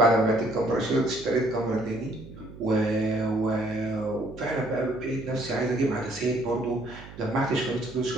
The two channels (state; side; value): noise; right; hum, 16 dB below the sound